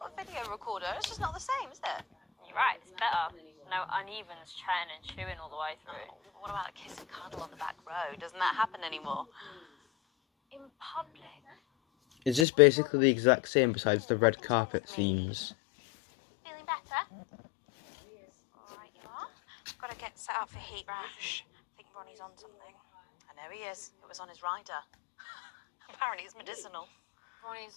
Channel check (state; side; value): drops out; right; at 12.5 s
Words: a video recorder. It's just not the same, is it? You're right, it's better. No uneven chatting and chewing all the way through. Oh, what about a kiss and cuddle on the back row? Doesn't that happen anymore? In public? Is this basically the exact same besides the red carpet scenes? Feeling better? Alright, you are. Got to get set up for heat rash. I think Ronnie's on something. I know he is. It was on his rider. Apparently it's medicinal.